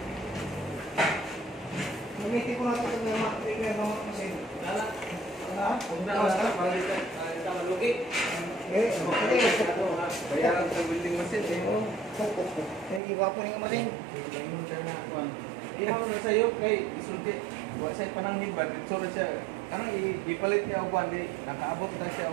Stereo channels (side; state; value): left; drops out; at 13.0 s